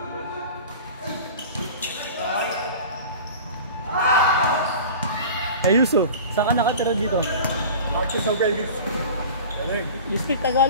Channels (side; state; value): both; inverted; correlation -0.37